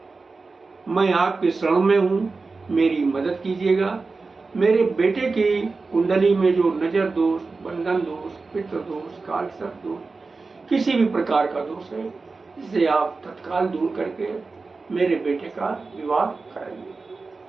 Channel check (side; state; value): left; quieter; 4.0 dB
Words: मैं आपके शरण में हूं, मेरी मदद कीजिएगा। मेरे बेटे की कुंडली में जो नजर दोष, बंधन दोष, पितृ दोष, कालसर्प दोष, किसी भी प्रकार का दोष है, इसे आप तत्काल दूर करके मेरे बेटे का विवाह कराइए।